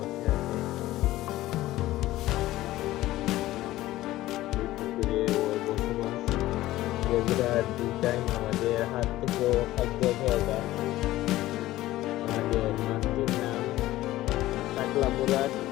রেগুলার 2 টাইম আমাদের হাত থেকে খাদ্য খাওয়া যায়। আমাদের মাছটির নাম টাকলা মুরাদ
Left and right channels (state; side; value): quieter; right; 16.1 dB